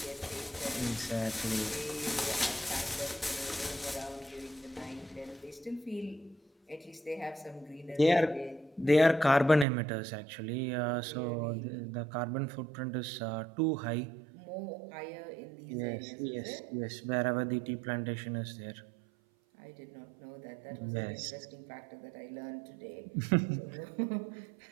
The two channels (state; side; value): drops out; left; at 9.7 s